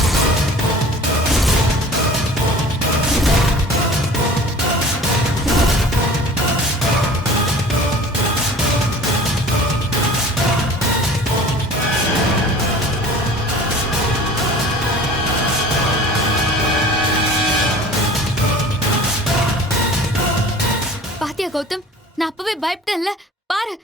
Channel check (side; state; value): both; normal; correlation 0.43